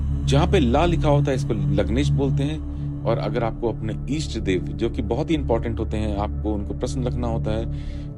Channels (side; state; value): both; identical; correlation 1.00